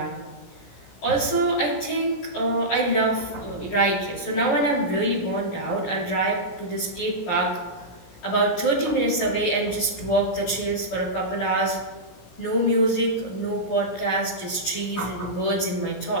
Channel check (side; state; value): right; late; 17 ms